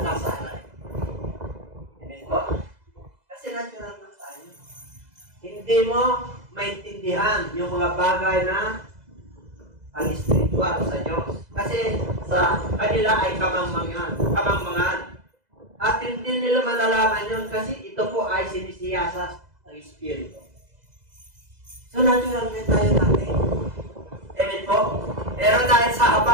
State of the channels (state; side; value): late; left; 2.0 ms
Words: kasala. Amen po? Kasi natural na tayo. Hindi mo maintindihan yung mga bagay na pang-spiritual sa Diyos. Kasi sa kanila ay kamangmangan. At hindi nila malalaman yun kasi ito po ay sinisiyasat ng Espiritu. So natural na tayo natin. Amen po? Pero dahil sa